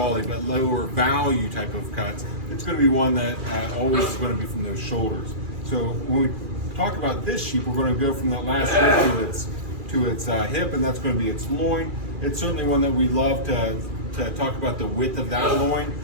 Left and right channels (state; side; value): late; left; 2.4 ms